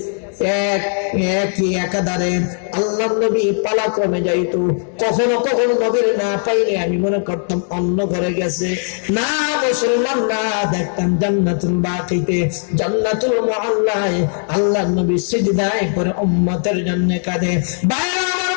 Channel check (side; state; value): right; silent; 67 dB below the other